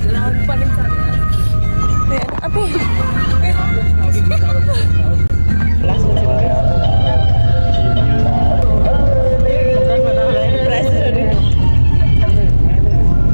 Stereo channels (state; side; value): inverted; both; correlation -1.00